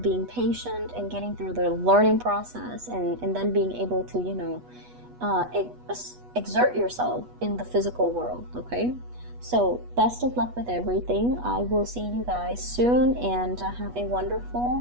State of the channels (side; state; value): left; late; 8.2 ms